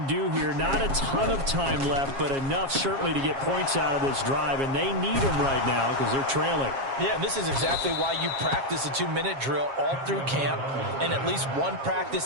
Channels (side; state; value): left; late; 7.4 ms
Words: do here. Not a ton of time left, but enough certainly to get points out of this drive, and they need them right now because they're trailing. Yeah, this is exactly why you practice a 2-minute drill all through camp and at least one